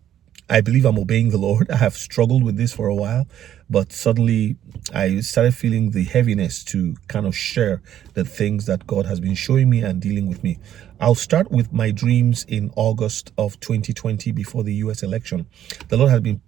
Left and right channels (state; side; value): quieter; left; 11.0 dB